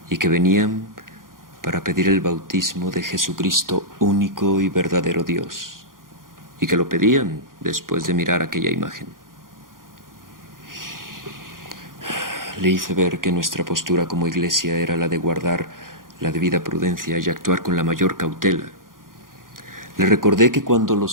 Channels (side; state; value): left; late; 0.90 ms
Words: y que venían para pedir el bautismo de Jesucristo, único y verdadero Dios, y que lo pedían después de mirar aquella imagen. Le hice ver que nuestra postura como iglesia era la de guardar la debida prudencia y actuar con la mayor cautela. Le recordé que cuando